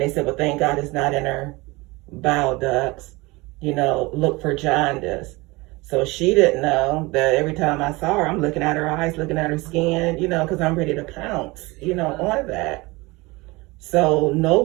they said, well, thank God it's not in her bile ducts, look for jaundice. So she didn't know that every time I saw her, I'm looking at her eyes, looking at her skin, because I'm ready to pounce, on that. So no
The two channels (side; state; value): left; quieter; 23.3 dB